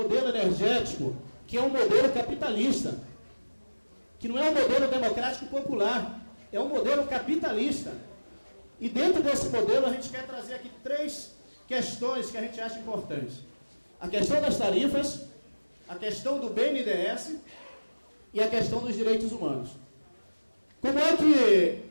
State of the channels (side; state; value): both; inverted; correlation -1.00